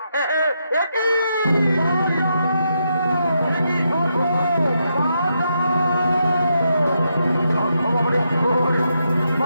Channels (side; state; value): both; inverted; correlation -0.82